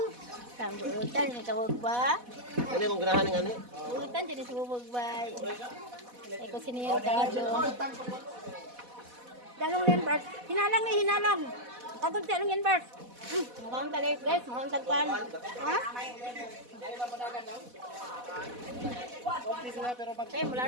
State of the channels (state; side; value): late; left; 4.1 ms